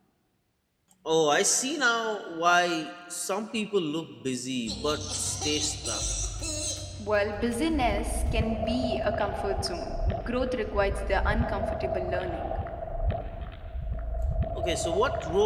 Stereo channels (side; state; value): both; identical; correlation 1.00